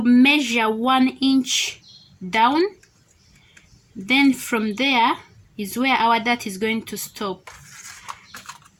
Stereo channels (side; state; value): both; identical; correlation 1.00